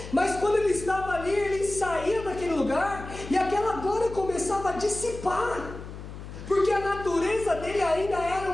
mas quando ele estava ali, ele saía daquele lugar e aquela glória começava a dissipar, porque a natureza dele ainda era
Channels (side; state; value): left; noise; hum, 12 dB below the sound